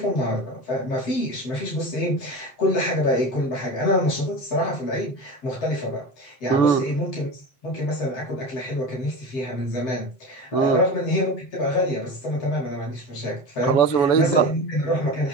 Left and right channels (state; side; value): late; right; 7.7 ms